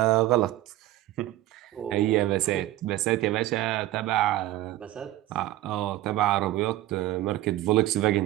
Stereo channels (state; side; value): quieter; left; 15.3 dB